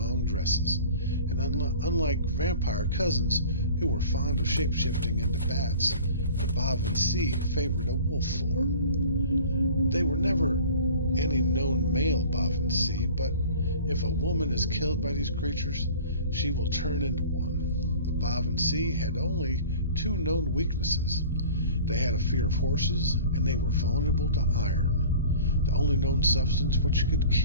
dresses. And unlike vampire cousins who were fond of shape-shifting into bats, the Baobhan Sith favored a wolf form. They were never any known male Baobhan Sith, but if a woman is killed by these creatures, she will turn into one. The Baobhan Sith had only two known weaknesses. They had a fear of horses, and they were vulnerable to iron, the only known substance which could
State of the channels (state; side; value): inverted; both; correlation -0.44